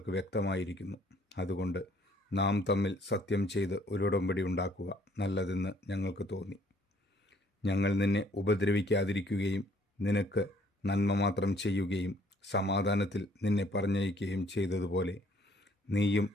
വ്യക്തമായിരിക്കുന്നു. അതുകൊണ്ട് നാം തമ്മിൽ സത്യം ചെയ്ത് ഒരു ഉടമ്പടി ഉണ്ടാക്കുക നല്ലതെന്ന് ഞങ്ങൾക്ക് തോന്നി. ഞങ്ങൾ നിന്നെ ഉപദ്രവിക്കാതിരിക്കുകയും നിനക്ക് നന്മ മാത്രം ചെയ്യുകയും സമാധാനത്തിൽ നിന്നെ പറഞ്ഞയക്കുകയും ചെയ്തതുപോലെ നീയും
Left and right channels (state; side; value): normal; both; correlation 0.62